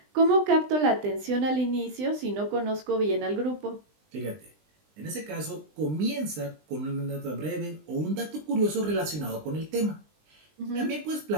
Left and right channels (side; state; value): left; late; 20 ms